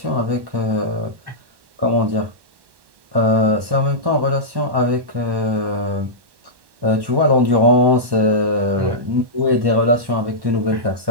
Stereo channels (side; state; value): left; late; 1.1 ms